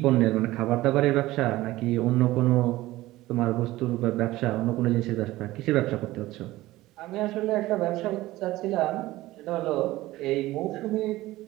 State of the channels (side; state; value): left; quieter; 17.3 dB